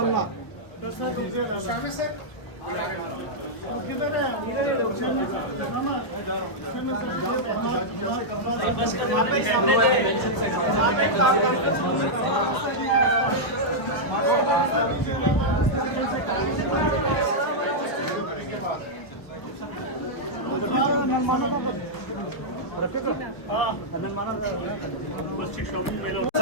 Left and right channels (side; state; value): right; late; 1.2 ms